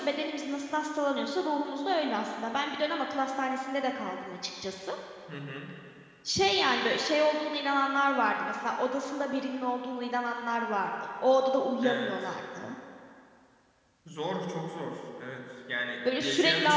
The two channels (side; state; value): both; identical; correlation 1.00